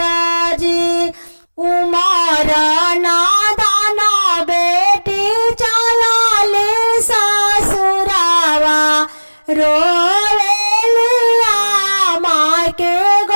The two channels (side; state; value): both; inverted; correlation -1.00